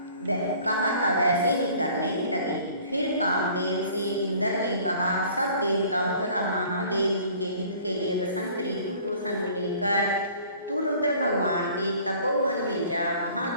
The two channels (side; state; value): both; inverted; correlation -0.52